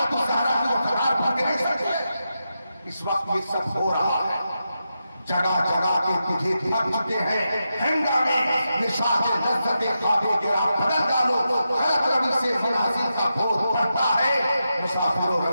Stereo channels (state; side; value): inverted; both; correlation -0.88